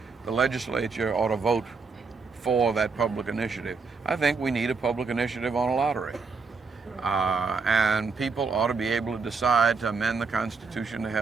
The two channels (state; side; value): quieter; left; 4.7 dB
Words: the legislature ought to vote for that public initiative. I think we need a public initiative on a lottery. And people ought to be able to decide to amend the Constitution to